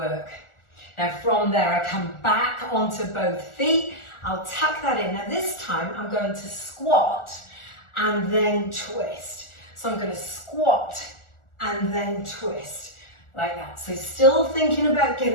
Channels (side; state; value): right; late; 1.4 ms